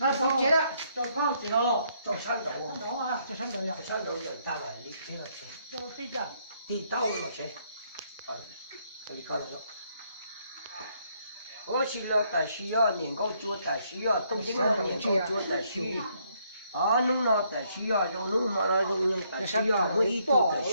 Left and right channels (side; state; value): both; inverted; correlation -0.71